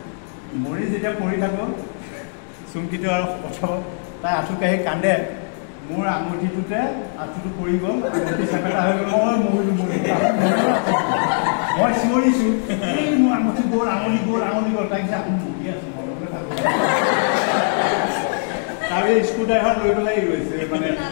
মৰি যেতিয়া পৰি থাকোঁ চুমকিটো আৰু পঠাব তাই আঁঠু কাঢ়ি কান্দে মোৰ আঙুঠিটোতে আঁঠুটো পৰি গ'ল আঙুঠি চেপেটা হৈ গ'ল মই চিঞৰিছোঁ এই মোৰ আঙুঠি গ'ল আঙুলি গ'ল তাই কৈছে আপুনি মৰি আছোঁ মৰমলৈ থাকোঁ তাৰ স্ক্ৰু ড্ৰাইভাৰ লৈ পেলাই ৰৈছে মানে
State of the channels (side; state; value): right; silent; digital silence